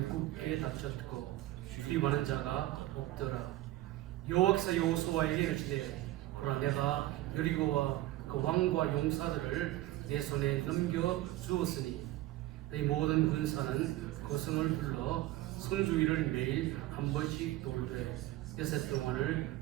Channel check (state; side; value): quieter; left; 16.2 dB